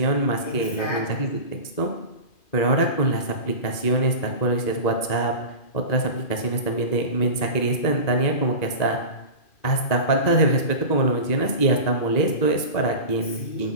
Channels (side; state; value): right; late; 2.4 ms